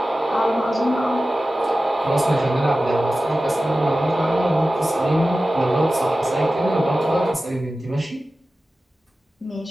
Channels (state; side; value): normal; both; correlation 0.95